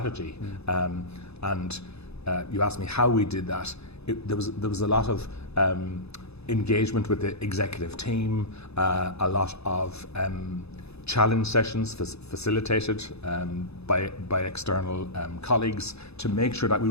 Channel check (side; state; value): right; late; 0.79 ms